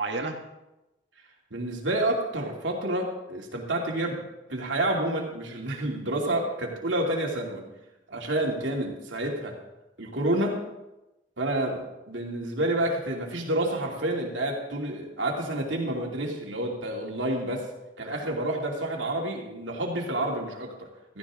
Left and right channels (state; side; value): normal; both; correlation 0.03